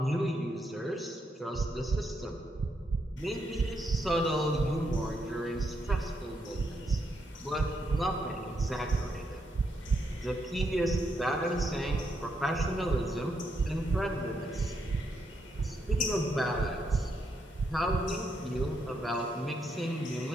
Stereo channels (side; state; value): both; normal; correlation 0.78